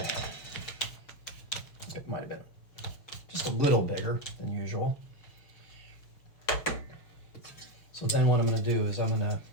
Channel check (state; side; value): late; right; 6.8 ms